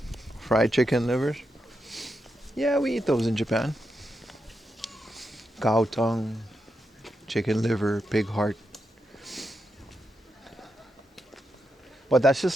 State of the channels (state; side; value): normal; both; correlation 0.85